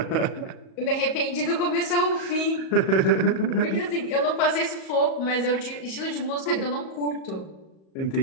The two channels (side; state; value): right; late; 38 ms